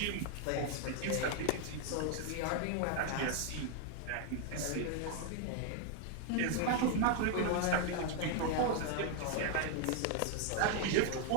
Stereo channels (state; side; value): different; both; correlation 0.00